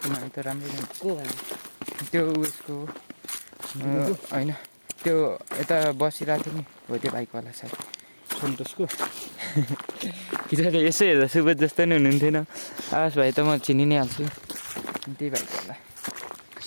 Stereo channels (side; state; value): both; inverted; correlation -1.00